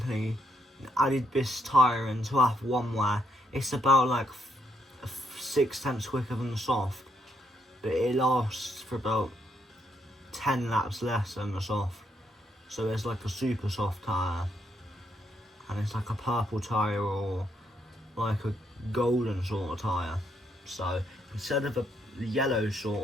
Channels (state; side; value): normal; both; correlation 0.76